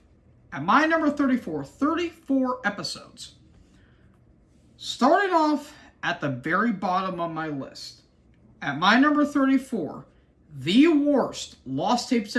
at my number 34, 34 episodes. Starting off at the very bottom of my list, at my number 34, the worst Lost Tapes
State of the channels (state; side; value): identical; both; correlation 1.00